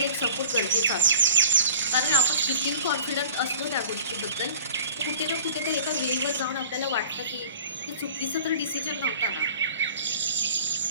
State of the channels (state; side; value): inverted; both; correlation -0.46